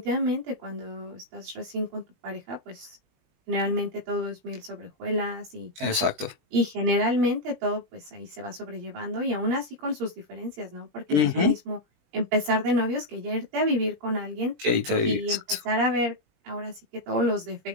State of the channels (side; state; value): left; late; 20 ms